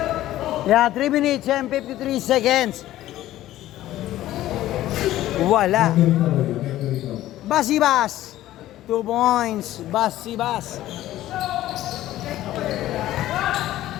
Yan, 3 minutes and 53 seconds. Wala. Basibas. 2 points. Basibas.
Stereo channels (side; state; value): right; quieter; 14.4 dB